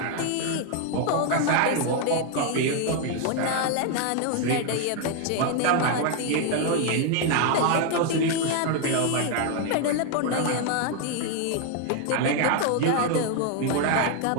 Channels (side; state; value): both; different; correlation 0.01